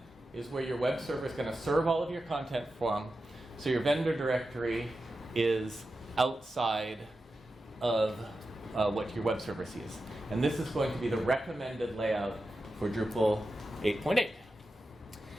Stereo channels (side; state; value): both; normal; correlation 0.91